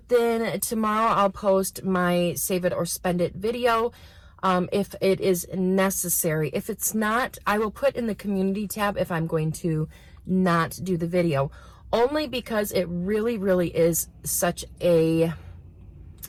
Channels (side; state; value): both; identical; correlation 1.00